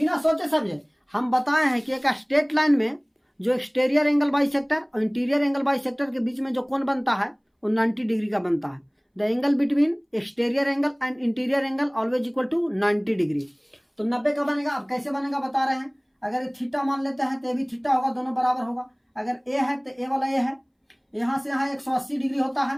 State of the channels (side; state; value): both; identical; correlation 1.00